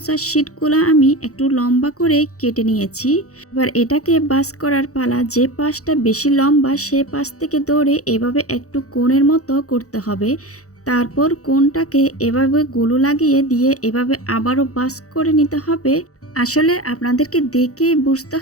শিটগুলো আমি একটু লম্বা করে কেটে নিয়েছি। এবার এটাকে বাস করার পালা। যে পাশটা বেশি লম্বা সে পাশ থেকে ধরে এভাবে একটু কোণের মতো করতে হবে। তারপর কোণটাকে এভাবে গুলো লাগিয়ে দিয়ে এভাবে আবারও বাস করে নিতে হবে। আসলে আপনাদেরকে দেখে বুঝতে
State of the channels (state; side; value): late; right; 0.65 ms